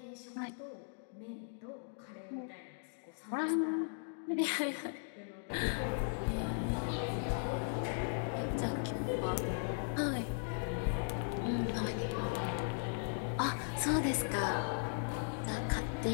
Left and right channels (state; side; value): silent; right; digital silence